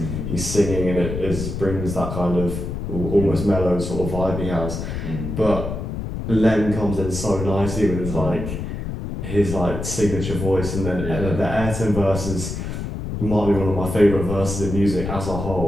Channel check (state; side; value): noise; left; rumble, 5 dB below the sound